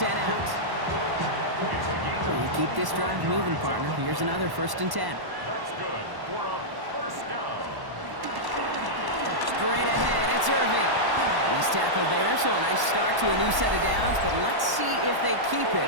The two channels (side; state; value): left; late; 1.1 ms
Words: out. You keep this drive moving, partner. Here's another 1st and 10. That's good for a first down. Straight ahead, it's Irving. He's tackled there, so a nice start to a new set of downs, but let's see if they keep